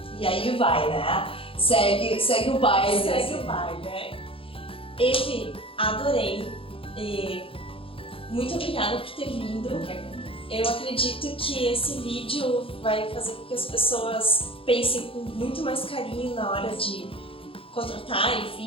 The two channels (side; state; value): right; late; 0.26 ms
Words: e aí vai, né? Segue o baile. Segue o baile, né? Eve, adorei. E muito obrigada por ter vindo. Eu acredito que esse vídeo vai fazer com que as pessoas pensem com muito mais carinho na hora de contratar,